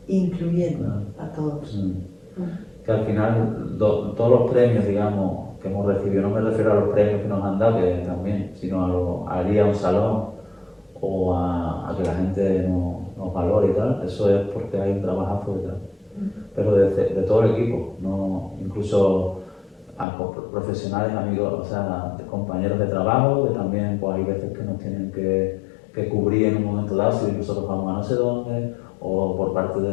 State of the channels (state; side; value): drops out; right; at 20.1 s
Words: Incluyendo a todos. Que al final, todos los premios, digamos, que hemos recibido, no me refiero a los premios que nos han dado, que también, sino a ir a un salón o a que la gente nos valore y tal, eso es porque hay un trabajazo detrás. Pero de todo el equipo, no, incluso a profesionales, amigos, o sea, compañeros de trabajo, que también pues, hay veces que nos tienen que cubrir en un momento dado si nosotros vamos a no sé dónde, o por parte